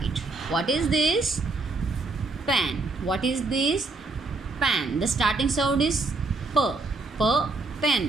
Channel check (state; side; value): quieter; left; 3.5 dB